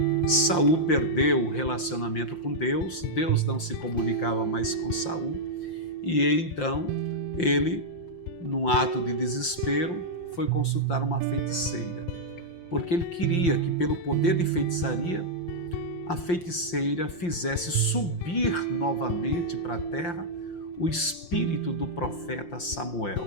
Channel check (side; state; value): right; late; 5.7 ms